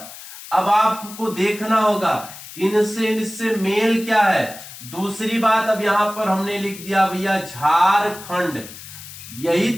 अब आपको देखना होगा इनसे मेल क्या है, दूसरी बात, अब यहां पर हमने लिख दिया भैया झारखंड, यही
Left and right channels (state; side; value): noise; left; hiss, 15 dB below the sound